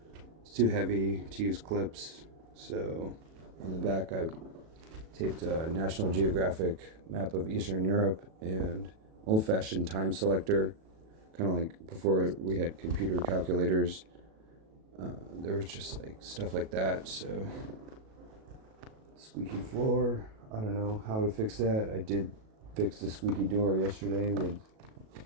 It's too heavy to use clips, so on the back I taped a National Geographic map of Eastern Europe and old-fashioned time selector, kind of like before we had computer calculators. There was just like stuff like that. So squeaky floor, I don't know how to fix that. I did fix the squeaky door yesterday with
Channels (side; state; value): left; late; 37 ms